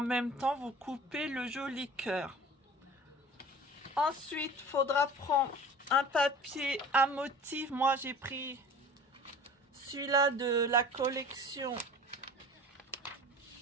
même temps, vous coupez le joli cœur. Ensuite, il faudra prendre un papier à motif. Moi, j'ai pris celui-là de la collection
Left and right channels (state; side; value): normal; both; correlation 0.41